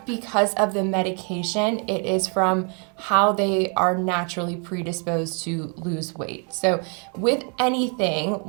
because of the medication, it is from how they are naturally predisposed to lose weight. So with anything,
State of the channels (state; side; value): quieter; left; 37.7 dB